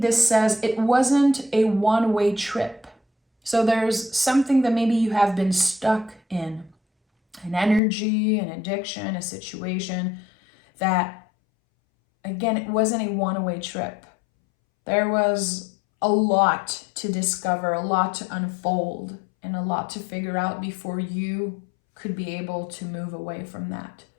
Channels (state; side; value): drops out; right; at 7.8 s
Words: says it wasn't a one-way trip. So there's something that maybe you have been stuck in. An energy, an addiction, a situation that, again, it wasn't a one-way trip. There was a lot to discover, a lot to unfold, and a lot to figure out before you could be able to move away from that.